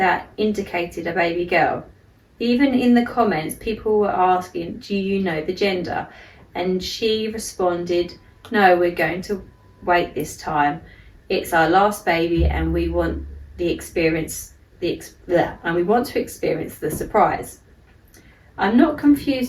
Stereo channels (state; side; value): identical; both; correlation 1.00